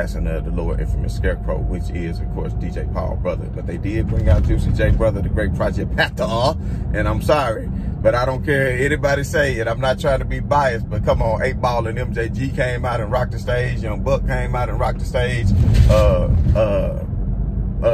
of the Lord Infamous Scarecrow, which is, of course, DJ Paul brother. But they did bring out Juicy J brother, the great Project Pata, and I'm sorry, but I don't care anybody say it. I'm not trying to be biased, but come on, 8 Ball and MJG came out and rocked the stage. Young Buck came out and rocked the stage.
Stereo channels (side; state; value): both; identical; correlation 1.00